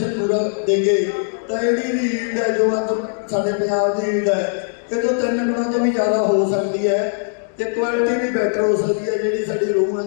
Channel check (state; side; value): silent; right; digital silence